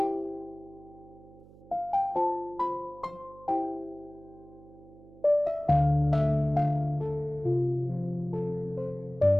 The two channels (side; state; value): right; noise; hum, 22 dB below the sound